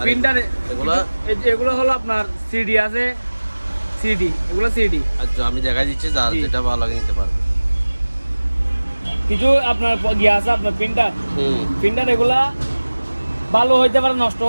প্রিন্টার এগুলো হলো আপনার সিডি আছে সিডি এগুলো সিডি আচ্ছা আমি দেখাই দিচ্ছি যার যেটা ভালো লাগে নিতে পারবে কিছু আপনার গিয়ে আছে আপনার প্রিন্টার এগুলা ভালো হইতে পারে নষ্ট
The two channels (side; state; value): both; inverted; correlation -1.00